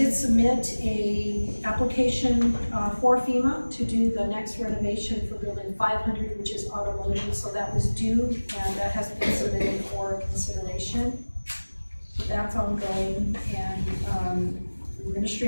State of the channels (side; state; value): both; inverted; correlation -1.00